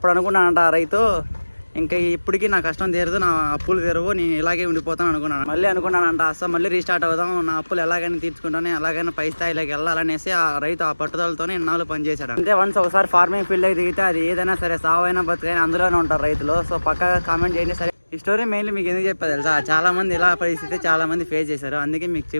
అనుకున్నానంట రైతు, ఇంకా ఇప్పటికీ నా కష్టం తీరదు, నా అప్పులు తీరవు, నేను ఇలాగే ఉండిపోతాను అనుకున్నాను. మళ్ళీ అనుకున్నానంట అసలు మళ్ళీ రీస్టార్ట్ అవుదాం, నా అప్పులు ఎలాగైనా తీర్చుకుంటాను, ఎలాగైనా పై స్థాయిలోకి వెళ్ళాలనేసి ఆ రైతు ఆ పట్టుదలతోనే ఇన్నాళ్ళు పనిచేశాడు. అంటే వన్స్ ఒకసారి ఫార్మింగ్ ఫీల్డ్కి దిగితే అది ఏదైనా సరే సావైనా బతుకైనా అందులోనే ఉంటారు రైతులు. సో పక్కగా కామెంట్ చేయండి. సరే ఈ స్టోరీ మెయిన్లీ మీకు ఎందుకు చెప్పారు తెలుసా, చాలా మంది ఇలా పరిస్థితి చాలా మంది ఫేస్ చేశారు, అందుకే మీకు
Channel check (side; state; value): both; inverted; correlation -1.00